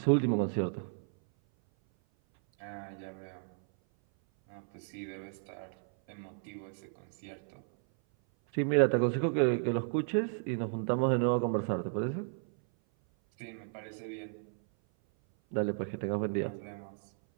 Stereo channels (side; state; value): left; silent; 55 dB below the other